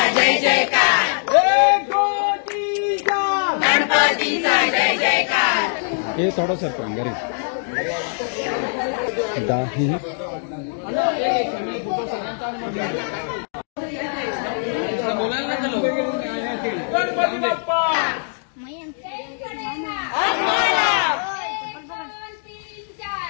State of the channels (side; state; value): right; silent; 64 dB below the other